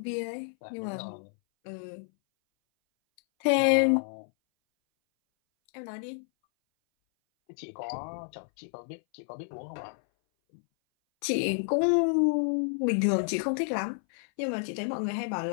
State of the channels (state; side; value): silent; right; 58 dB below the other